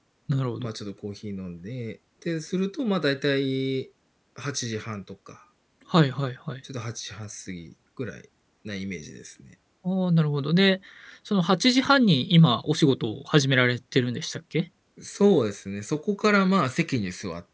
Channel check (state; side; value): identical; both; correlation 1.00